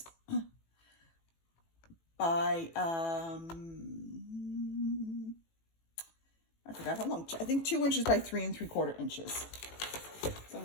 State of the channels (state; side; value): late; right; 18 ms